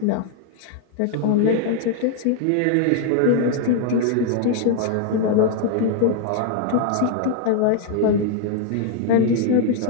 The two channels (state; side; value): different; both; correlation 0.00